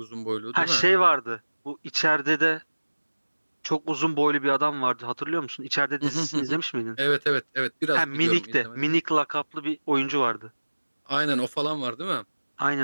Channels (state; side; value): inverted; both; correlation -1.00